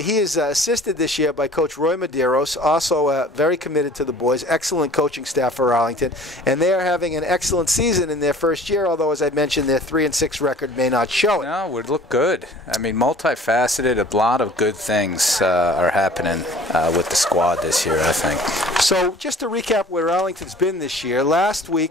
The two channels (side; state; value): both; normal; correlation 0.48